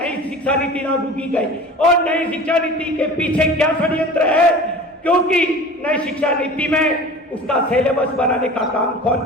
शिक्षा नीति लागू की गई। और नई शिक्षा नीति के पीछे क्या षड्यंत्र है, क्योंकि नई शिक्षा नीति में उसका सिलेबस बनाने का काम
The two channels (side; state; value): both; normal; correlation 0.39